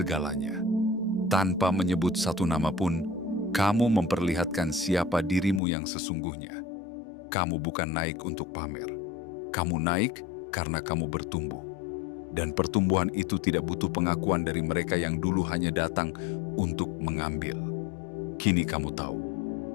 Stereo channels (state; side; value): drops out; right; at 5.6 s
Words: Tanpa menyebut satu nama pun, kamu memperlihatkan siapa dirimu yang sesungguhnya. Kamu bukan naik untuk pamer. Kamu naik karena kamu bertumbuh. Dan pertumbuhan itu tidak butuh pengakuan dari mereka yang dulu hanya datang untuk mengambil. Kini kamu tahu,